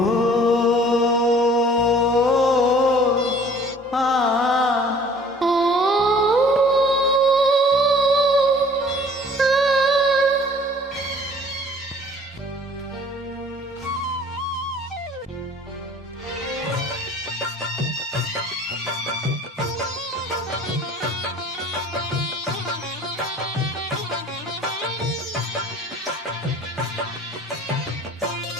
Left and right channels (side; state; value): both; normal; correlation 0.51